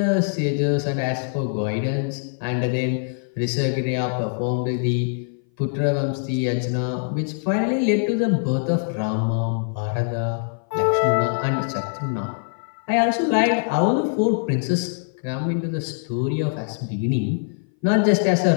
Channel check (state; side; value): silent; right; 58 dB below the other